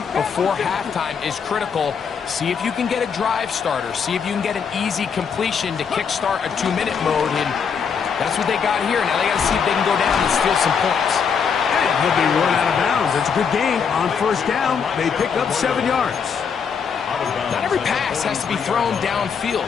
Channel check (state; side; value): quieter; right; 6.5 dB